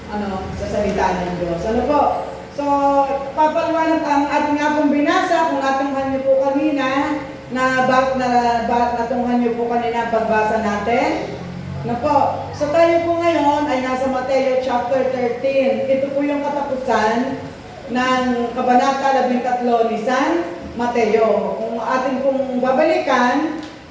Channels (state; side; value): identical; both; correlation 1.00